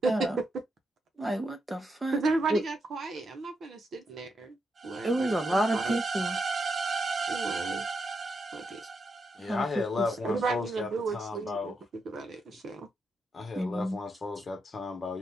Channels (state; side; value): normal; both; correlation 0.83